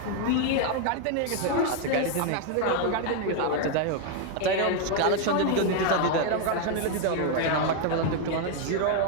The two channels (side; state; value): both; different; correlation 0.01